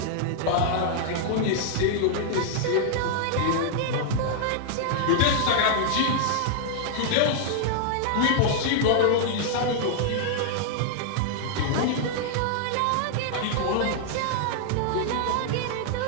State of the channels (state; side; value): different; both; correlation -0.01